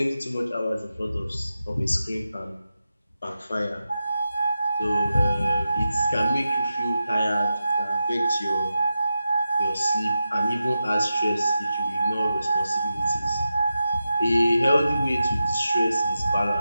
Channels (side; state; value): both; inverted; correlation -0.90